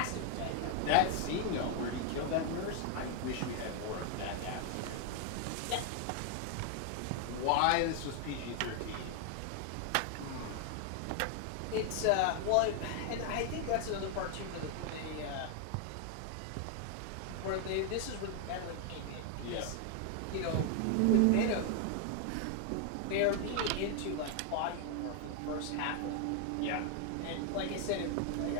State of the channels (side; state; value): both; different; correlation 0.00